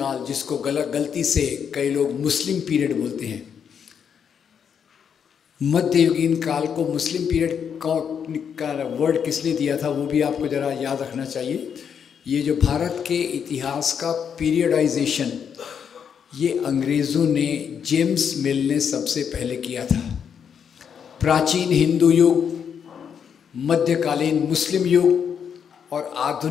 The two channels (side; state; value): right; quieter; 7.5 dB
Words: जिसको गलती से कई लोग मुस्लिम पीरियड बोलते हैं, मध्ययुगीन काल को मुस्लिम पीरियड का वर्ड किसने दिया था वो भी आपको ज़रा याद रखना चाहिए। ये जो भारत के इतिहास का पीरियडाइजेशन ये अंग्रेज़ों ने, जेम्स मिल ने सबसे पहले किया था। प्राचीन हिंदू युग, मध्यकालीन मुस्लिम युग और